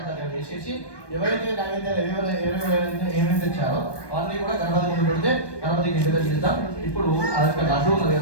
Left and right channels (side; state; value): right; late; 1.2 ms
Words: దగ్గర వేసేసి ఎవరైతే నైవేద్యాలు ఏమేమి తెచ్చారో అవన్నీ కూడా గణపతి ముందు పెడితే గణపతికి ఇంటి దగ్గర ఇద్దాం. ఇప్పుడు ఆ యొక్క లడ్డు ఉన్నది